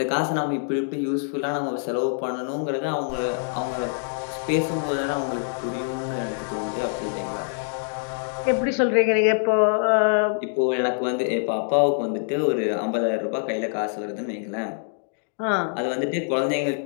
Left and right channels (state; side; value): silent; right; digital silence